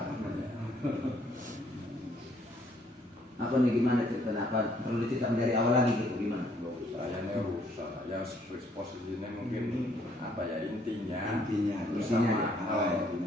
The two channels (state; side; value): normal; both; correlation 0.66